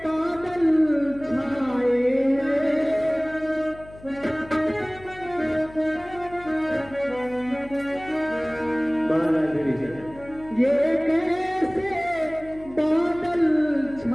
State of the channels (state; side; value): noise; left; hum, 20 dB below the sound